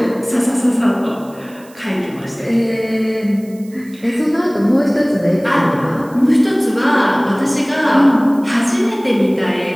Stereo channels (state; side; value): noise; right; hiss, 26 dB below the sound